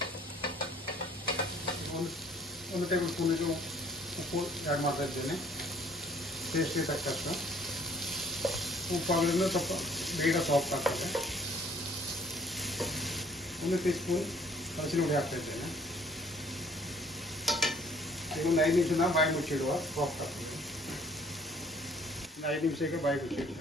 1 ಟೇಬಲ್ ಸ್ಪೂನಿಗೆ ಉಪ್ಪು ಆ್ಯಡ್ ಮಾಡ್ತಾ ಇದ್ದೇನೆ, ಟೇಸ್ಟಿಗೆ ತಕ್ಕಷ್ಟು. ಉಪ್ಪು ಹಾಕಿದ್ರೆ ಸ್ವಲ್ಪ ಬೇಗ ಸಾಫ್ಟ್ ಆಗ್ತದೆ. 1 ಟೀ ಸ್ಪೂನ್ ಹಸಿರು ಹುಡಿ ಹಾಕ್ತಾ ಇದ್ದೇನೆ. ಈಗ ಒಂದು 5 ನಿಮಿಷ ಬಾಯಿ ಮುಚ್ಚಿಡುವ, ಸಾಫ್ಟ್ ಆಗ್ತದೆ. 5 ನಿಮಿಷಕ್ಕೆ ಬಾಯಿ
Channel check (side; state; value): both; normal; correlation 0.59